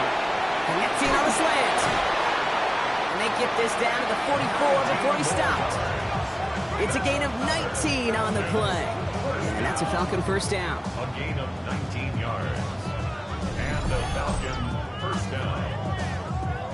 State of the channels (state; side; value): identical; both; correlation 1.00